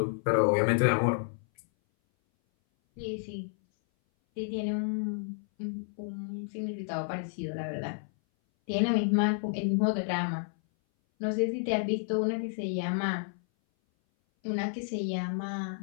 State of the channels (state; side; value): silent; right; 57 dB below the other